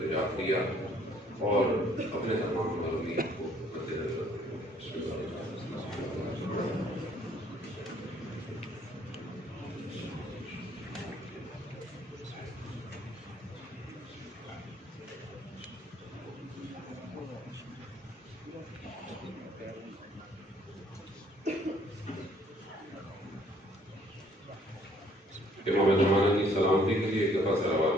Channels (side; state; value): both; normal; correlation 0.62